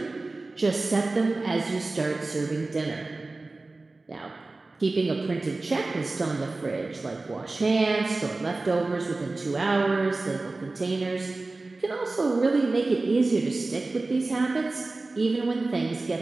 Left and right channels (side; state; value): left; quieter; 3.3 dB